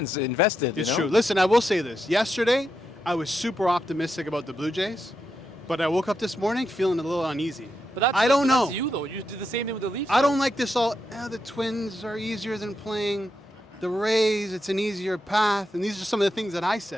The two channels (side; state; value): both; normal; correlation 0.84